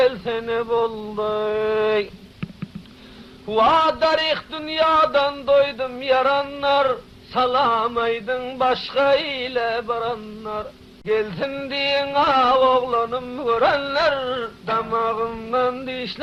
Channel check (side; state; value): both; identical; correlation 1.00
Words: boldu. Vadarih dünyadan doydum yaranlar, salamaydın başka ile baranlar. Gelsin diyen ağ oğlanım görenler, damağımdan